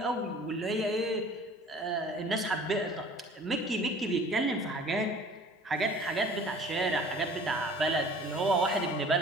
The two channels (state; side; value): normal; both; correlation 0.48